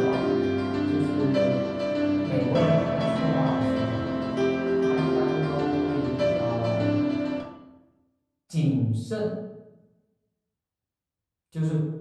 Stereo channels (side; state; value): both; identical; correlation 1.00